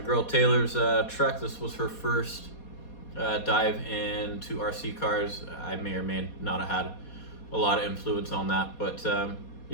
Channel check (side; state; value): right; late; 4.2 ms